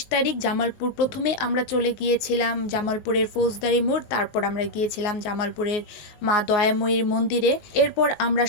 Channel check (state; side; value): late; right; 19 ms